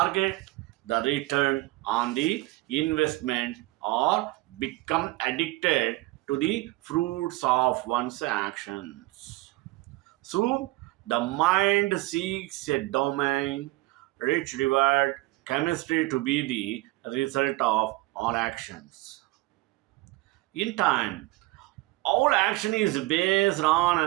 the return on the investment, or become addicted to the fruits of one's actions. Soon, the mind seeks a domain, rich reward, chemistry to be the result of all actions. In time, all action is based on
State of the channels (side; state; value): left; quieter; 20.3 dB